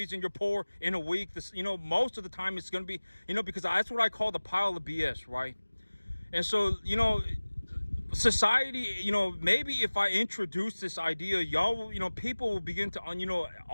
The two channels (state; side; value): inverted; both; correlation -1.00